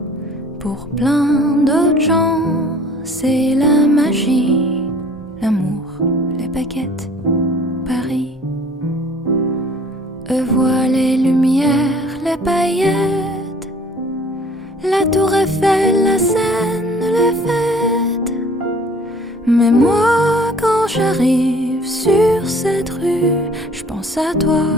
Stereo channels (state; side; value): normal; both; correlation 0.52